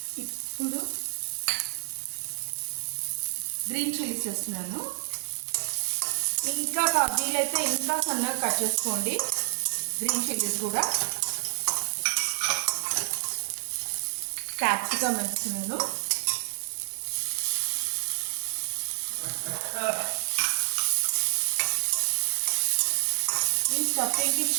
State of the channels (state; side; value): silent; left; 59 dB below the other